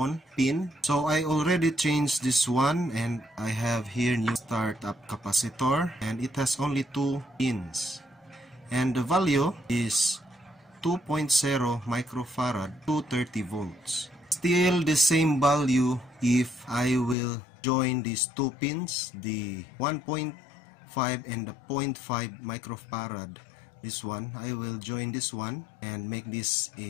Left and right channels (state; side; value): drops out; right; at 17.2 s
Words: pin. So I already changed this one and I have here new startup capacitor and it has only 2 pins. And the value is 2.0 microfarad to 30 volts. Still the same value if I will join these 2 pins, the 1.5 and the 0.5 microfarad. This one, I will join this one and make this